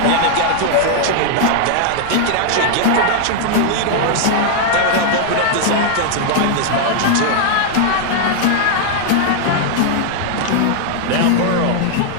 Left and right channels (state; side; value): different; both; correlation 0.00